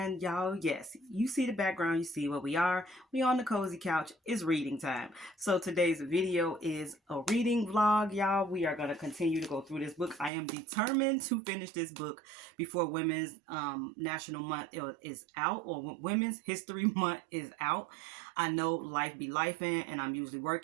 y'all, yes, you see the background, you see where we are. We on the cozy couch. It's reading time. So today's video is a reading vlog, y'all. We are going to continue to go through this book. I am determined to finish this book before Women's National Month is out, or Women's History Month is out. I know life be lifing, and I'm usually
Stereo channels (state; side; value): drops out; left; at 10.3 s